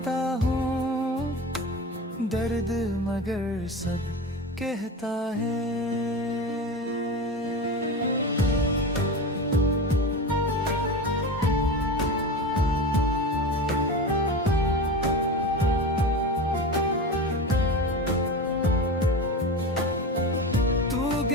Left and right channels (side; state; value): both; normal; correlation 0.26